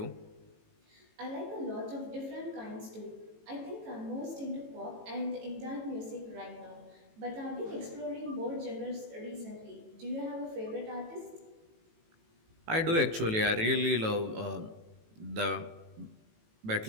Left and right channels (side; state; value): left; late; 18 ms